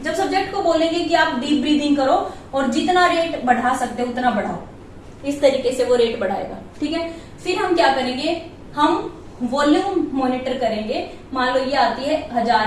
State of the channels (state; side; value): identical; both; correlation 1.00